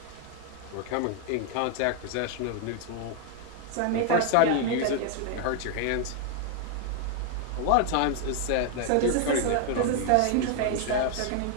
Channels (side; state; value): both; different; correlation 0.00